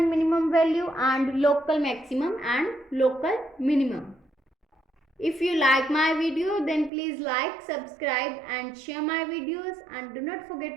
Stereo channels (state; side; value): drops out; left; at 6.9 s